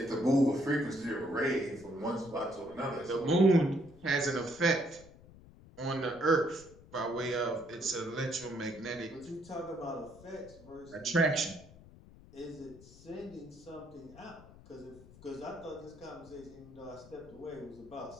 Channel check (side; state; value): left; noise; rumble, 21 dB below the sound